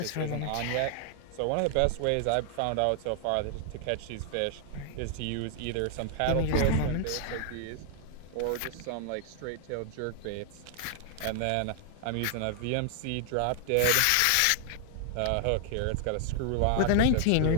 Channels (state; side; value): different; both; correlation 0.00